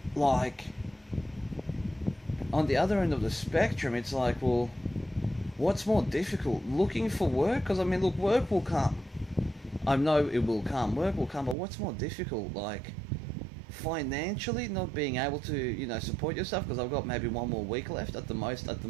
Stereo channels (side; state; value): left; drops out; at 11.6 s